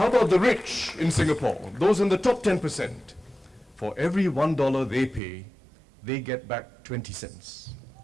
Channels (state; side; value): drops out; left; at 5.2 s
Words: about the rich in Singapore? Those in the top 10%. For every $1 they pay, they get back 20 cents.